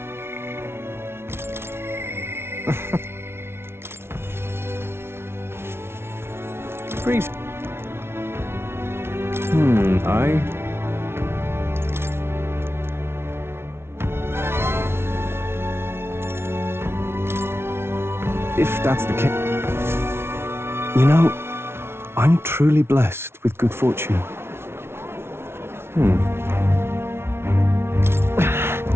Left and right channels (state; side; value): late; left; 0.12 ms